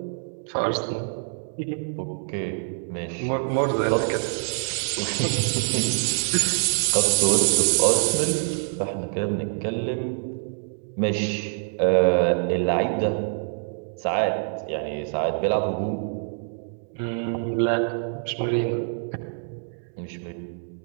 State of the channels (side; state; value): left; silent; 60 dB below the other